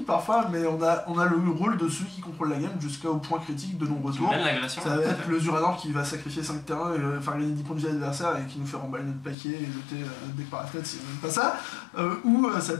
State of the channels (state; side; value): drops out; right; at 9.3 s